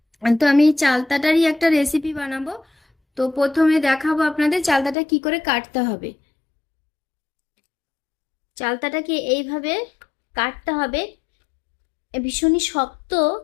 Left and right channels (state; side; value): drops out; right; at 5.0 s